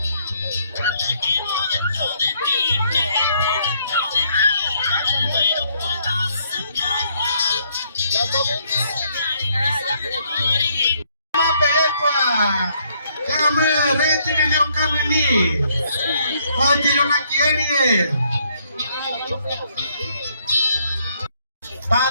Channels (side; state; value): both; inverted; correlation -0.69